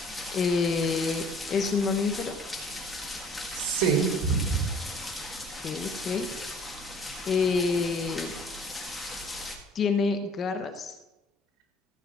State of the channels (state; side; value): normal; both; correlation 0.53